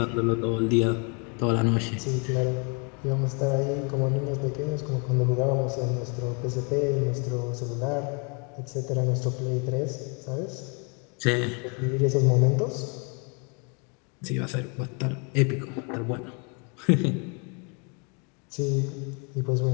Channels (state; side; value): quieter; right; 35.4 dB